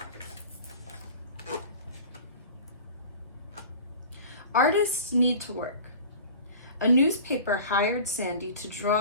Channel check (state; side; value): inverted; both; correlation -0.40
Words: Artists need to work. A newspaper hired Sandy to